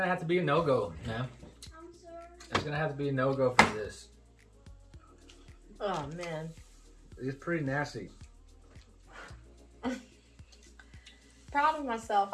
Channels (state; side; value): identical; both; correlation 1.00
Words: have to be a no-go, man. I'm sorry. It's gonna have to be a no-go for this. Oh man. It's pretty nasty. Proud of myself.